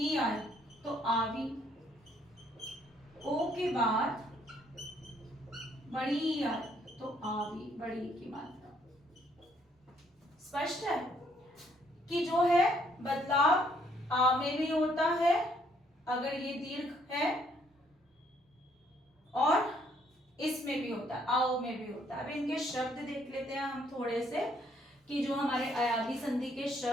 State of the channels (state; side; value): normal; both; correlation 0.67